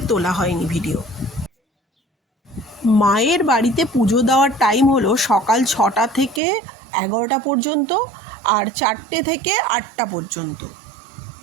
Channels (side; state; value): left; drops out; at 6.4 s